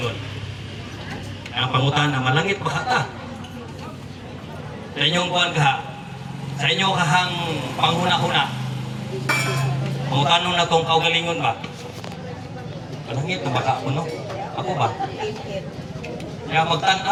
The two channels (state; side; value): identical; both; correlation 1.00